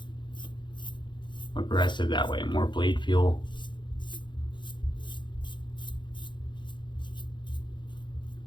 aggressive that way, more blade feel.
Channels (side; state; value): right; late; 0.23 ms